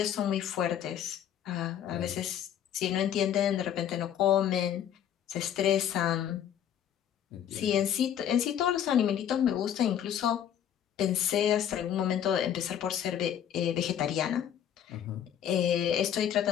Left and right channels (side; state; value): right; quieter; 9.8 dB